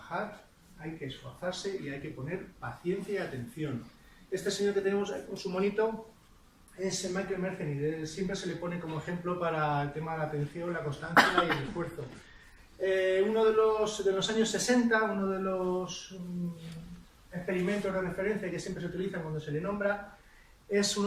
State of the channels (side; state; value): both; identical; correlation 1.00